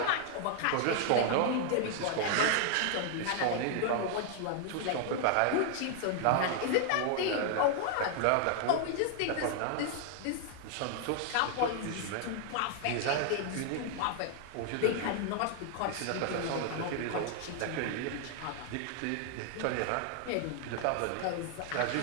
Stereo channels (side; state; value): both; different; correlation 0.00